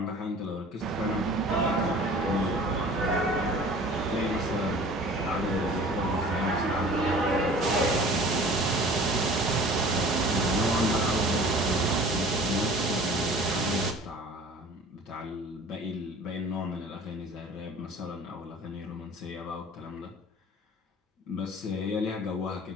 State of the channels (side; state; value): both; normal; correlation 0.45